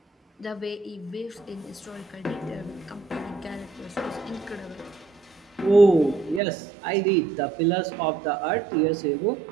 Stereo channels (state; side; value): drops out; left; at 6.4 s